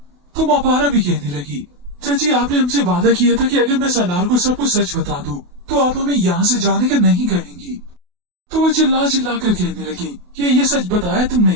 तो मापारा भी कहने लगी, चाची आपने हमसे वादा किया था कि अगर मैं सलार को सब कुछ सच बता दूं, तो आप हमें यहाँ से जाने का नहीं कहेंगी। तो वो चिल्ला चिल्ला कर कहने लगी कि ये सच बताया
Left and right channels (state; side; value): late; left; 28 ms